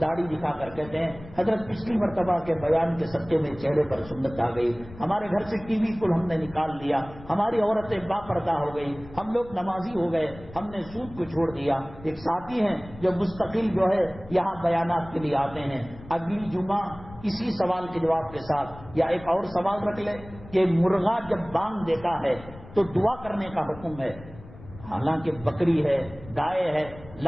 داڑھی دکھا کر کہتے ہیں حضرت پچھلی مرتبہ کے بیان کے صدقے میں چہرے پر سنت آ گئی، ہمارے گھر سے ٹی وی کو ہم نے نکال لیا، ہماری عورتیں با پردہ ہو گئی، ہم لوگ نمازی ہو گئے، ہم نے سود کو چھوڑ دیا۔ ایک ساتھی ہیں جو مستقل جو ہے یہاں بیانات کے لیے آتے ہیں، اگلی جمعہ اسی سوال کے جواب کے ساتھ یا ایک اور سوال رکھ لے کہ مرغا جب بانگ دیتا ہے تو دعا کرنے کا حکم ہے، حالانکہ بکری ہے، گائے ہے،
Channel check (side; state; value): left; noise; rumble, 18 dB below the sound